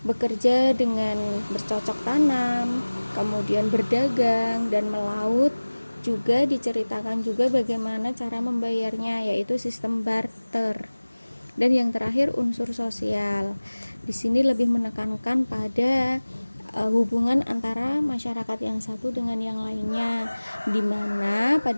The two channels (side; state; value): both; inverted; correlation -1.00